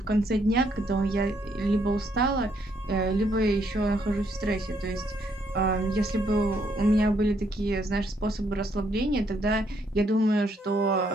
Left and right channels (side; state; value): both; normal; correlation 0.72